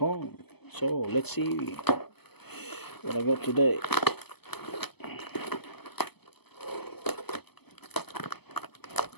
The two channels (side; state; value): right; late; 0.97 ms